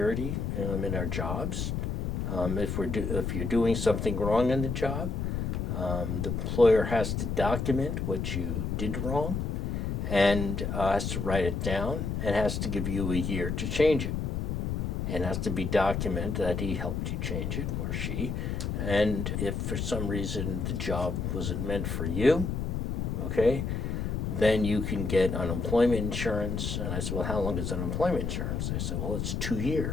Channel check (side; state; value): left; noise; rumble, 1 dB below the sound